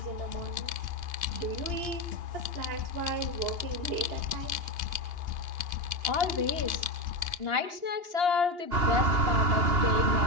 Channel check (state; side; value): late; left; 2.8 ms